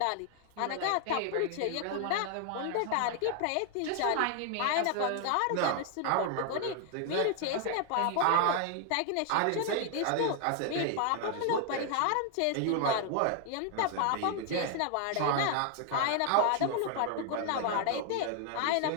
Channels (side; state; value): both; different; correlation 0.00